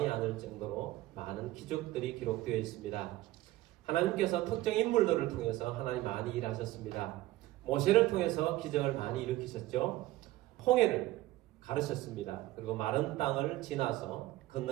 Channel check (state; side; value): quieter; left; 16.7 dB